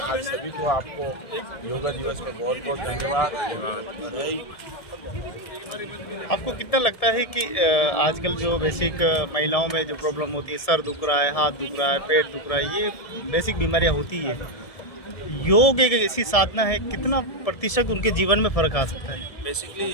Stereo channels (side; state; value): right; late; 1.7 ms